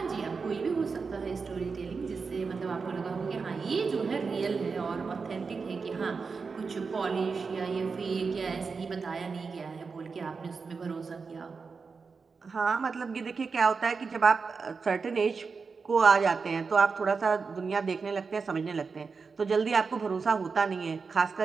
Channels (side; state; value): left; quieter; 4.9 dB